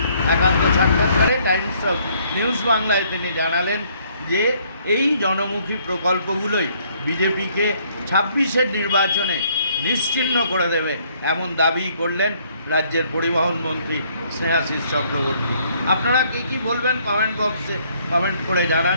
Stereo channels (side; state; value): both; inverted; correlation -0.65